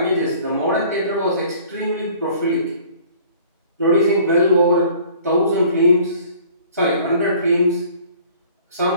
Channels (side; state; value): both; inverted; correlation -0.52